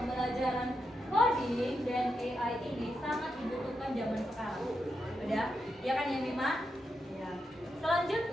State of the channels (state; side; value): normal; both; correlation 0.85